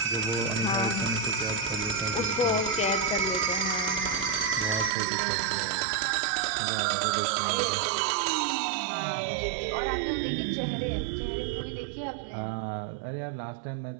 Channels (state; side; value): drops out; left; at 4.9 s